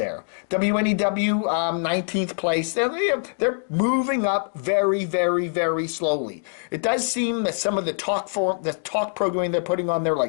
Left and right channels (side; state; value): right; silent; digital silence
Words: WNEW, 19th place. They're moving up very, very, very slowly. It does seem that some of the talk programming they're putting on there,